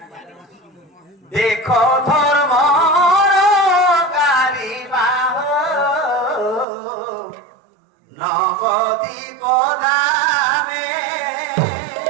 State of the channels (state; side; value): drops out; left; at 6.7 s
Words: দেখো ধর্ম নবদ্বীপ ধামে